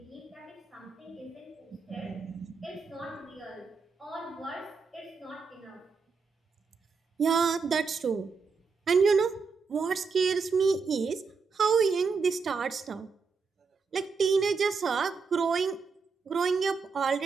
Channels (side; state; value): left; quieter; 5.0 dB